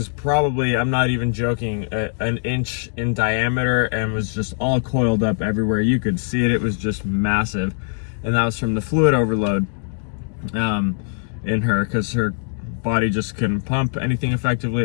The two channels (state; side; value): silent; right; digital silence